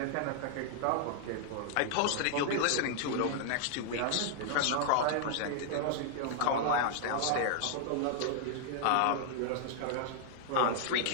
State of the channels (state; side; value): different; both; correlation -0.01